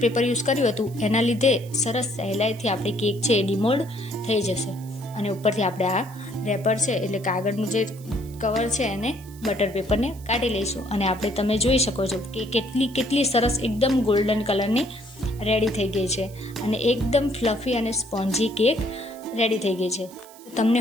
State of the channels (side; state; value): right; noise; hiss, 22 dB below the sound